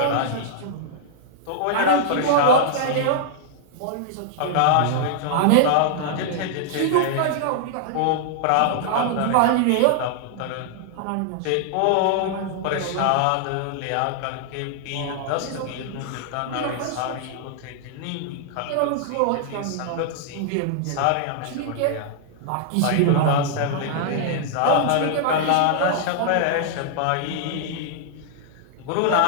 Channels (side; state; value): both; different; correlation -0.01